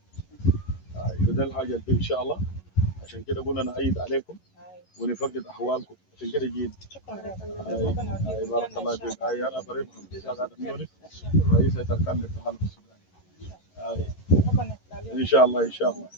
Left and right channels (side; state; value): right; late; 11 ms